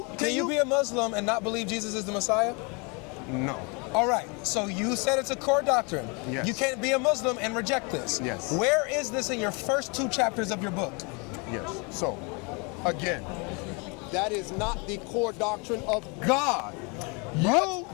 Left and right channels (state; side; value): quieter; right; 31.5 dB